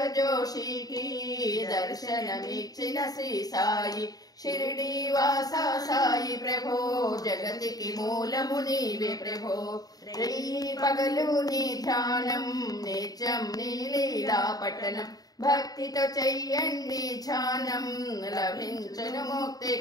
జోషికి దర్శనమిచ్చిన శ్రీ సాయి. షిరిడి వాసా సాయి ప్రభో జగతికి మూలము నీవే ప్రభో, పగలు నీ ధ్యానం నిత్యం నీ లీలా పట్టణం, భక్తితో చెయ్యండి ధ్యానం లభించును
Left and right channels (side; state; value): right; late; 0.18 ms